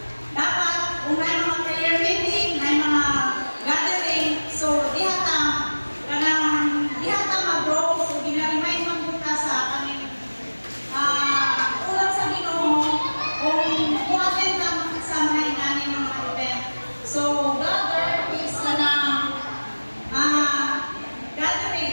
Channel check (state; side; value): inverted; both; correlation -1.00